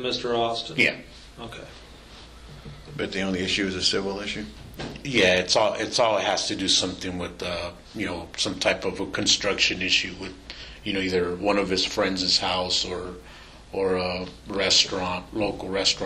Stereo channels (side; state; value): both; identical; correlation 1.00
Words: Austin. Yeah. Okay. But the only issue is a civil issue? Yeah, it's all it has to do something with some type of a construction issue with either one of his friends' house or a local